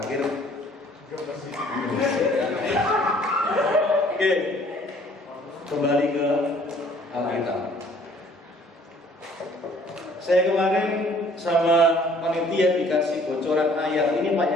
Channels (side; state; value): both; normal; correlation 0.57